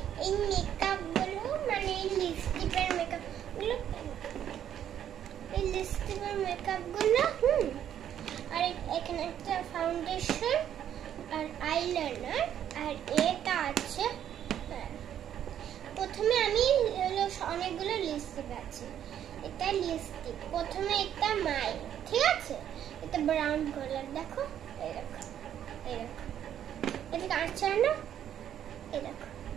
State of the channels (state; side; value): quieter; left; 10.1 dB